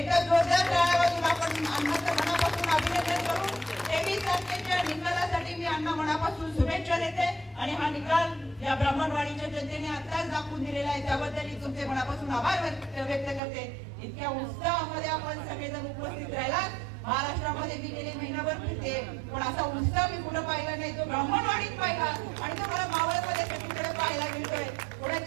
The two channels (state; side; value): drops out; left; at 13.4 s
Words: जोरदार टाळ्या वाजवून आपण अण्णाचं मनापासून अभिनंदन करू. 23 तारखेच्या निकालासाठी मी अण्णा मनापासून शुभेच्छा देते आणि हा निकाल या ब्राह्मणवाडीच्या जनतेने आताच दाखवून दिलेला आहे, त्याबद्दल तुमचे मनापासून आभार व्यक्त करते. इतक्या उत्साहामध्ये आपण सगळेजण उपस्थित राहिला. महाराष्ट्रामध्ये मी गेले महिनाभर फिरते, पण असा उत्साह मी कुठं पाहिला नाही. तो ब्राह्मणवाडीत पाहिला आणि तो मला मावळमध्ये सगळीकडे पाहायला मिळतोय. पुढे